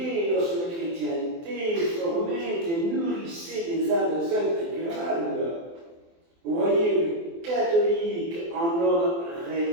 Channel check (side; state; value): left; late; 24 ms